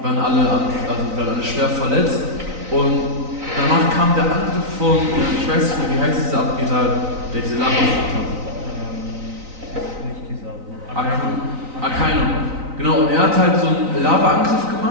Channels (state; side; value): late; left; 3.9 ms